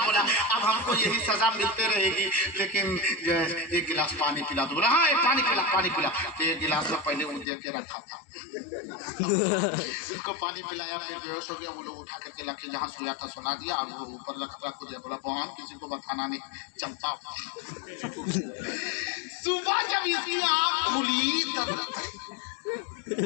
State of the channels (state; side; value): drops out; right; at 7.5 s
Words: बोला अब हमको यही सजा मिलते रहेगी, लेकिन एक गिलास पानी पिला दो। बोला हाँ एक पानी पिला, पानी पिला। तो एक गिलास में पहले वो दे के रखा था, इसको पानी पिलाया, फिर बेहोश हो गया। वो लोग उठा करके लाके जहाँ सोया था सुला दिया, और वो ऊपर रख दिया। बोला बहन किसी को बताना नहीं, चलता। सुबह जब इसकी आँख खुली तब लगता